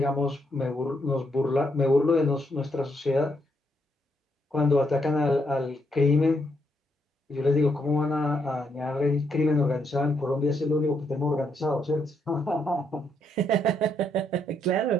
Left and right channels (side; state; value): both; normal; correlation 0.76